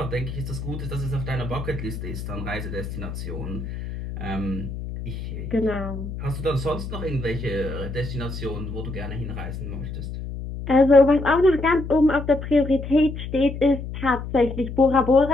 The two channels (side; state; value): left; noise; hum, 7 dB below the sound